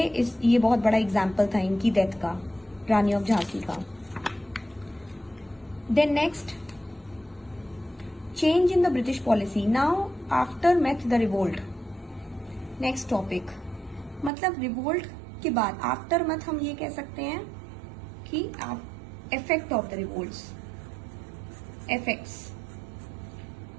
बहुत बड़ा एग्जाम्पल था इनकी डेथ का, रानी ऑफ झांसी का। Then next, change in the British policy now after math the revolt. Next topic, मतलब रिवोल्ट के बाद, आफ्टर मत हम ये कह सकते हैं कि effect of the revolts, effects,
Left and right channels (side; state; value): left; drops out; at 14.3 s